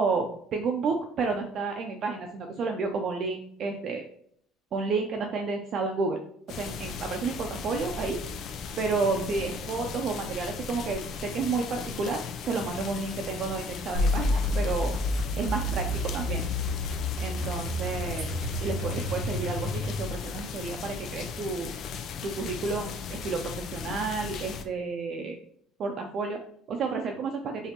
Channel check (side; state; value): both; normal; correlation 0.56